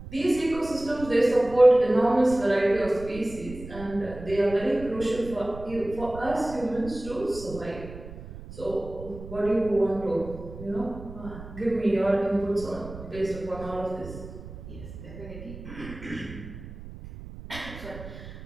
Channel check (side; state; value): right; noise; rumble, 13 dB below the sound